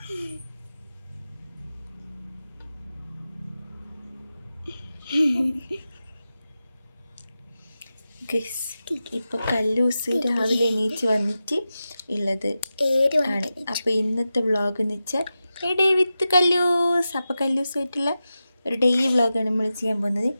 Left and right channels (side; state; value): both; inverted; correlation -0.92